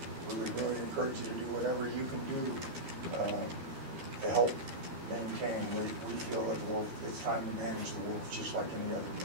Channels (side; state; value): left; late; 12 ms